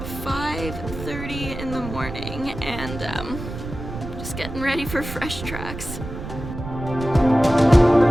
5:30 in the morning, and just getting ready for fresh tracks.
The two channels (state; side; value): noise; right; rumble, 9 dB below the sound